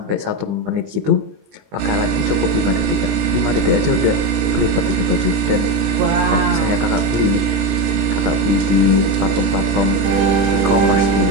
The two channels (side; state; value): left; late; 20 ms